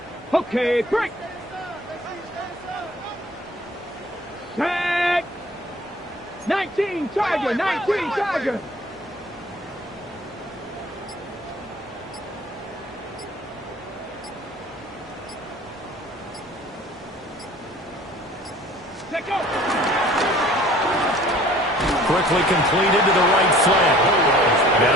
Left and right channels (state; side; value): normal; both; correlation 0.50